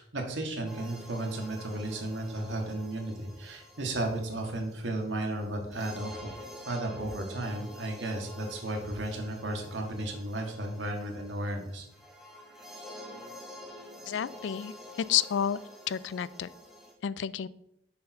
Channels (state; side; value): normal; both; correlation 0.36